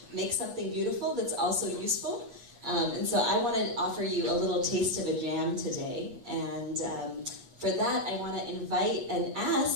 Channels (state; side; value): late; left; 7.9 ms